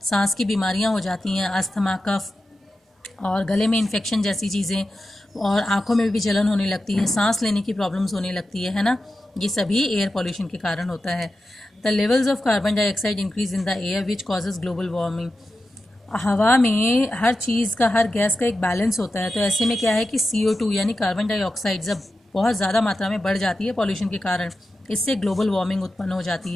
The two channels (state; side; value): normal; both; correlation 0.91